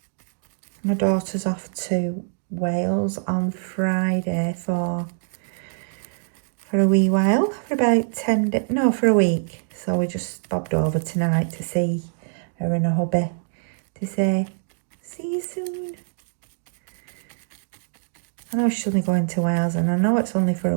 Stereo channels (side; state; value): left; silent; digital silence